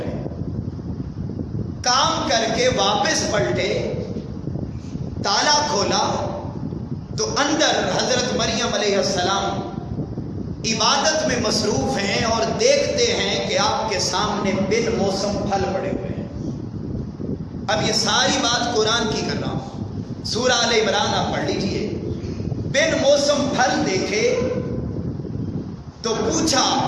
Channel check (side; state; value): both; identical; correlation 1.00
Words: کام کر کے واپس پلٹے، تالا کھولا تو اندر حضرت مریم علیہ السلام عبادت میں مصروف ہیں، اور دیکھتے ہیں کہ آپ کے سامنے بن موسم پھل پڑے ہوئے ہیں۔ اب یہ ساری بات قرآن کی کر رہا ہوں، سورہ آل عمران آپ پڑھ لیجئے۔ بن موسم پھل دیکھے تو پوچھا،